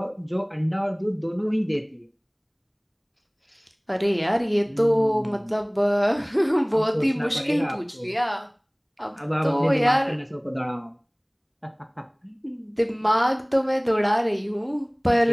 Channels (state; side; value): identical; both; correlation 1.00